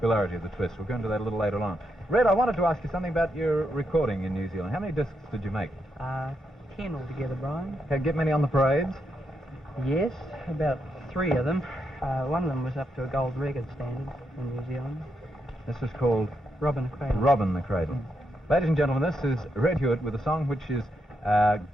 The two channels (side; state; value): both; normal; correlation 0.81